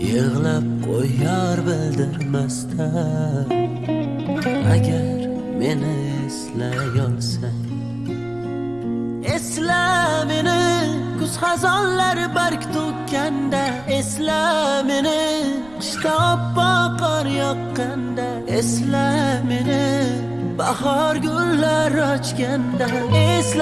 yig'lab qo'yar bildirmasdan. Agar meni eslay olsang, esla meni kuz xazonlar barg to'kkanda, esla meni qishda oppoq qor yoqqanda, esla meni bahor gullar ochganda.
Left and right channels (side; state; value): right; noise; rumble, 24 dB below the sound